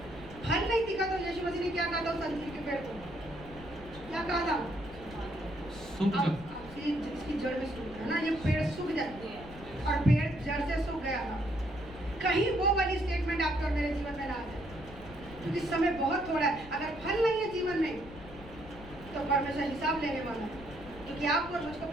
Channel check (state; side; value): noise; left; rumble, 16 dB below the sound